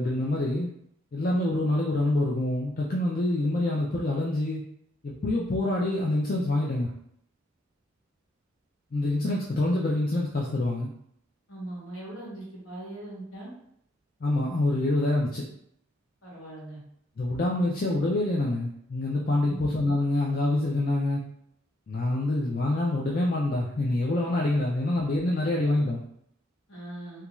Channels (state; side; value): normal; both; correlation 0.77